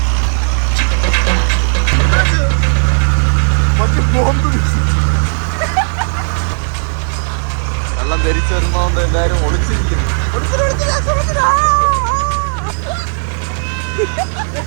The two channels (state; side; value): silent; left; 65 dB below the other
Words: വെള്ളം ധരിച്ചു വരുന്നോണ്ട് എല്ലാരും ഒളിച്ചിരിക്കുന്നു.